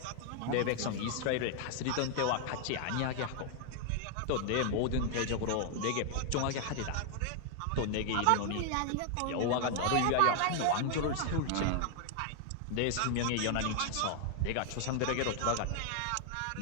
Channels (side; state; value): both; different; correlation 0.00